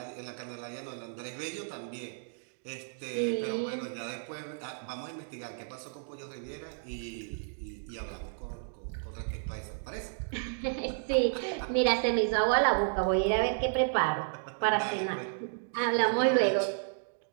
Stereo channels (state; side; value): silent; left; digital silence